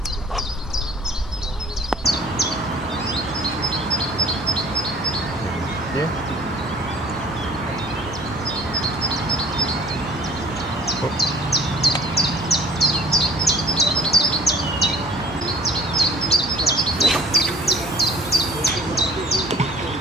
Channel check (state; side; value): normal; both; correlation 0.50